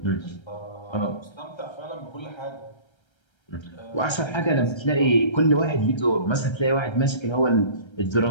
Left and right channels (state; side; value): late; right; 1.3 ms